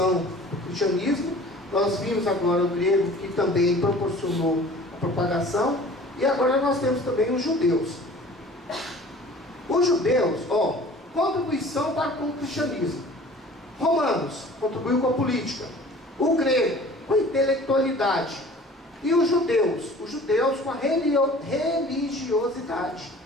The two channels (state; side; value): normal; both; correlation 0.46